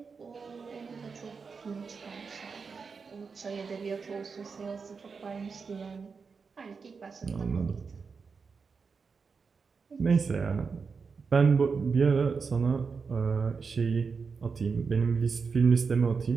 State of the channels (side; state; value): left; quieter; 5.2 dB